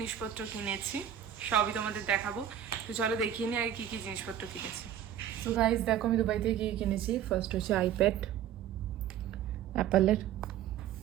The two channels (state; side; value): quieter; left; 10.2 dB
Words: কিনেছি, সবই তোমাদের দেখাবো। তো চলো দেখিয়ে নিই আগে কী কী জিনিসপত্র কিনেছি। সো গাইজ দেখো আমি দুবাই থেকে কী কিনেছি। ফার্স্ট হচ্ছে আইপ্যাড অ্যাপেলের,